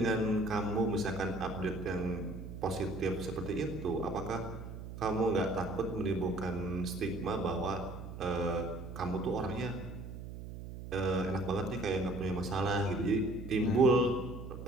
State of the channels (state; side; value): noise; right; hum, 10 dB below the sound